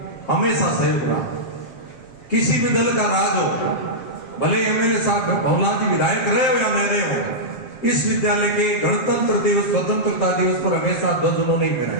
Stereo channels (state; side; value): late; right; 7.6 ms